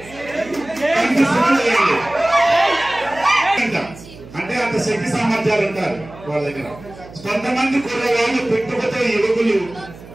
అంటే అంత శక్తి సామర్థ్యాలు ఉంటారు వాళ్ళ దగ్గర. కొంతమంది కుర్రవాళ్ళు పుట్టుకతో యువకులు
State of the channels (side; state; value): right; noise; hum, 18 dB below the sound